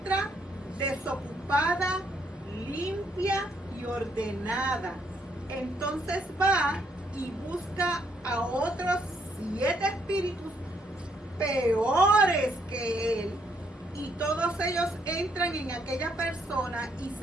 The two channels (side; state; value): both; normal; correlation 0.72